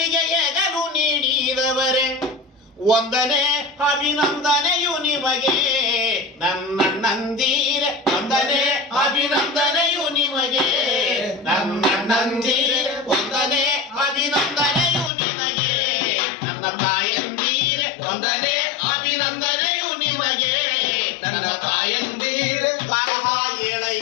ಎಗಲು ನೀಡಿದವರೇ, ಒಂದನೇ ಅಭಿನಂದನೆಯು ನಿಮಗೆ ನನ್ನಣ್ಣಂದಿರೆ, ಒಂದನೇ ಅಭಿನಂದನೆಯು ನಿಮಗೆ ನನ್ನಣ್ಣಂದಿರೆ, ಒಂದನೇ ಅಭಿನಂದನೆಯು ನಿಮಗೆ ನನ್ನ ತಾಯಂದಿರೆ, ಒಂದನೇ ಅಭಿನಂದನೆಯು ನಿಮಗೆ ನನ್ನ ತಾಯಂದಿರೆ. ಬರಹ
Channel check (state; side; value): drops out; right; at 15.1 s